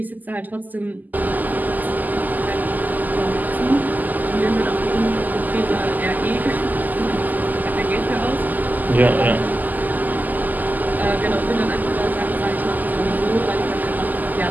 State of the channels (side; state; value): left; late; 0.083 ms